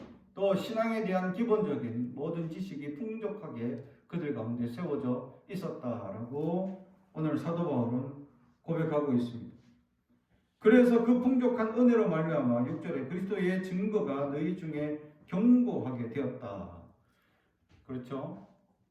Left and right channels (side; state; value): both; identical; correlation 1.00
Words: 또 신앙에 대한 기본적인 모든 지식이 풍족하게 그들 가운데 세워져 있었다라고 오늘 사도 바울은 고백하고 있습니다. 그래서 그 풍족한 은혜로 말미암아 6절에 그리스도의 증거가 너희 중에 견고하게 되었다. 그렇죠?